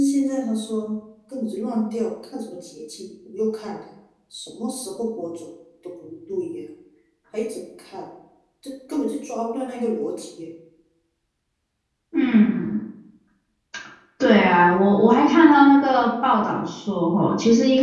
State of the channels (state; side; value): identical; both; correlation 1.00